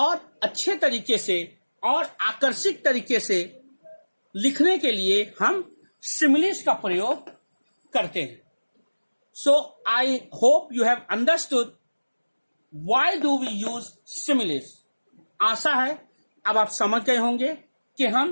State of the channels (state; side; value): inverted; both; correlation -1.00